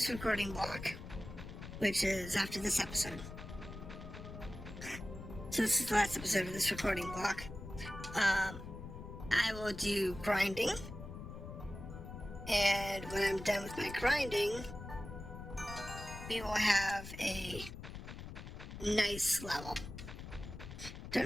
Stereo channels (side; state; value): left; noise; rumble, 11 dB below the sound